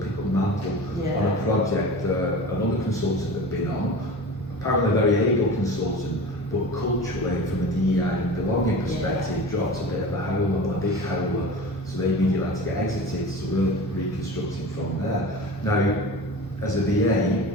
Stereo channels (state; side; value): normal; both; correlation 0.34